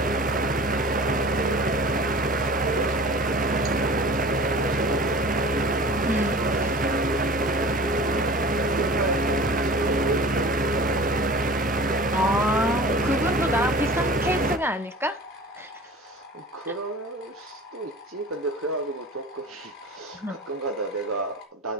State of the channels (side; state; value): both; normal; correlation 0.40